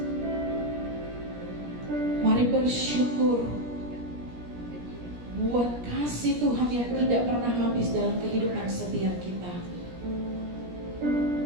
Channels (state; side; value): late; left; 17 ms